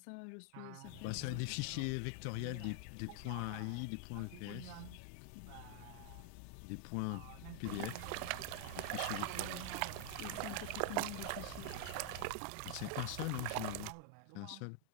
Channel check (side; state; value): both; different; correlation 0.00